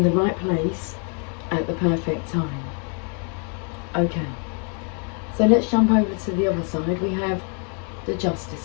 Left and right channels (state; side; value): quieter; right; 40.0 dB